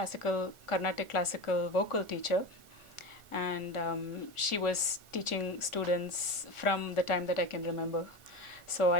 classical vocal teacher, and she was teaching students from the time that I can remember. So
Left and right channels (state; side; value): late; right; 1.4 ms